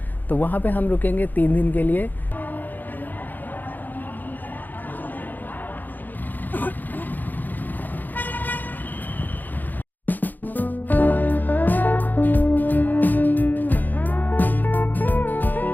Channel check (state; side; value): late; right; 0.086 ms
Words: तो वहाँ पे हम रुकेंगे 3 दिन के लिए।